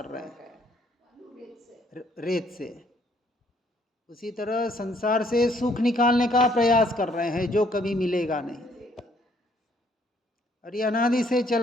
रहे हैं रेत से। उसी तरह संसार से सुख निकालने का प्रयास कर रहे हैं जो कभी मिलेगा नहीं, और ये अनादि से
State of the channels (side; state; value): both; normal; correlation 0.65